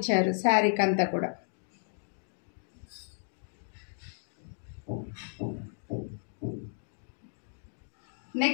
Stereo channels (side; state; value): right; silent; digital silence